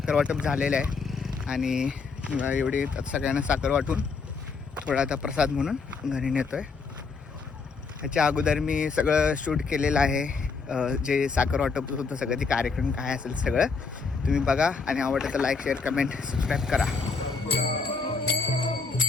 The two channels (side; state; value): right; quieter; 4.8 dB